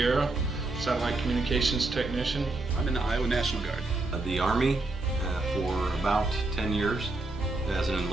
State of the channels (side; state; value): left; quieter; 3.0 dB